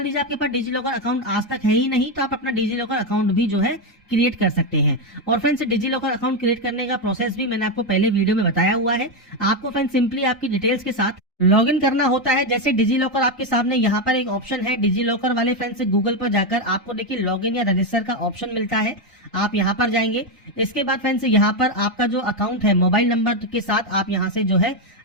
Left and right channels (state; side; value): normal; both; correlation 0.07